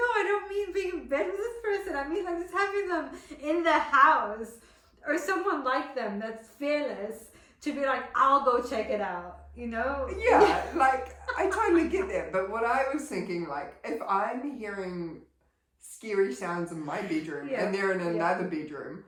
I don't mean being in bed with this person. I mean like just having them in the house or someone like them that's fearless to be like, I'll go check it out, Yeah, like I totally get that. But what I was thinking, like, if I'm hearing scary sounds in my bedroom and they're in another bedroom,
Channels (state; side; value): identical; both; correlation 1.00